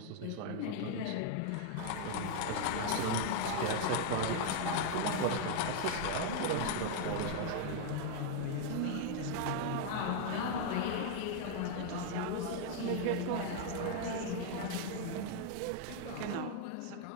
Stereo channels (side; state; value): both; different; correlation 0.00